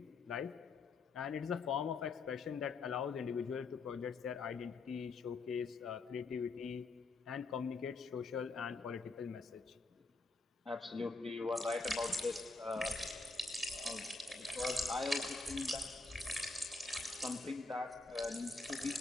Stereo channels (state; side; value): quieter; right; 3.6 dB